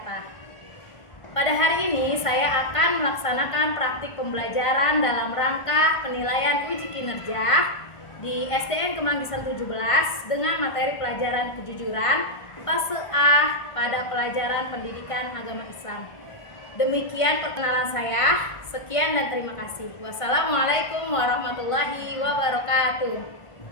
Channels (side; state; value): right; late; 1.5 ms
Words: Pada hari ini saya akan melaksanakan praktik pembelajaran dalam rangka penilaian uji kinerja di SDN Kemanggisan 17 dengan materi pelajaran kejujuran fase A pada pelajaran pendidikan agama Islam. Demikian perkenalan saya. Sekian dan terima kasih. Wassalamualaikum warahmatullahi wabarakatuh.